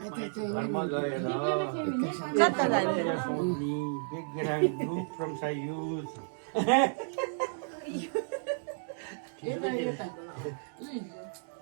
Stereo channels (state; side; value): silent; left; digital silence